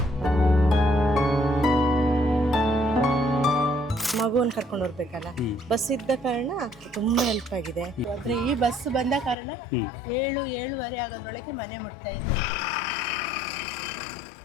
ಮಗುವನ್ನು ಕರ್ಕೊಂಡು ಹೋಗ್ಬೇಕಲ್ಲ, ಬಸ್ ಇದ್ದ ಕಾರಣ ತುಂಬಾ ಹೆಲ್ಪ್ ಆಗಿದೆ. ಆದ್ರೆ ಈ ಬಸ್ ಬಂದ ಕಾರಣ 7-7:30 ಆಗೋದ್ರೊಳಗೆ ಮನೆ ಮುಟ್ತಾ ಇದ್ದೆ.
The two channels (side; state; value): right; drops out; at 9.3 s